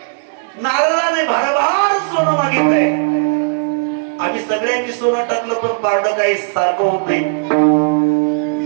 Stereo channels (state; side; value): silent; left; digital silence